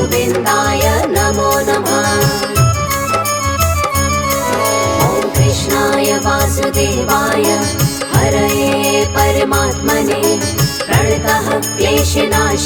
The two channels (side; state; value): both; identical; correlation 1.00